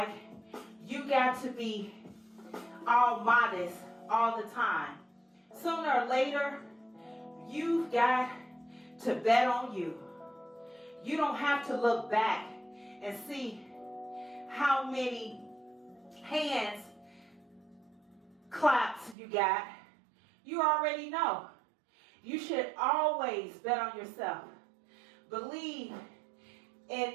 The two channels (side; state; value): left; drops out; at 19.2 s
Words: you got to be all modest all the time. Sooner or later, you've got to bet on you. You don't have to look back and see how many hands claps you got. You already know. You should always bet on yourself. Believe in